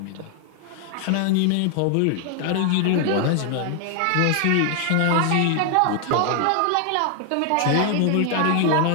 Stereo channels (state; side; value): different; both; correlation 0.00